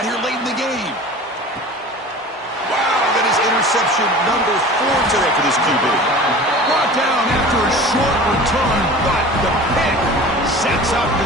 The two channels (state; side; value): normal; both; correlation 0.39